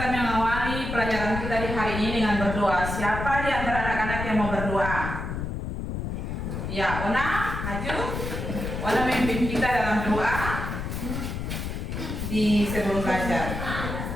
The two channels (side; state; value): left; noise; rumble, 4 dB below the sound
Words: mengawali pelajaran kita di hari ini dengan berdoa. Siapa di antara anak-anak yang mau berdoa? Ya, Ona, maju. Ona memimpin kita dalam doa di sebelum belajar.